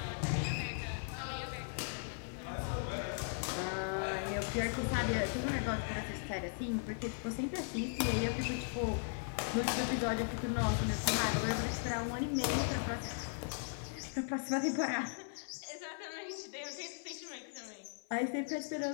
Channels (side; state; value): right; silent; 53 dB below the other